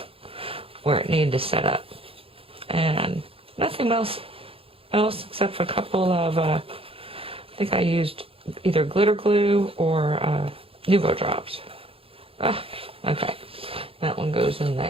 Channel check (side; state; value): left; late; 0.27 ms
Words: where it needed to set up. And nothing else except for a couple of, I think I used either glitter glue or Nuvo drops. Okay, that one goes in